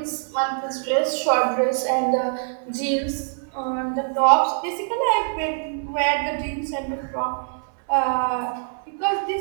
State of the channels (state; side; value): silent; left; digital silence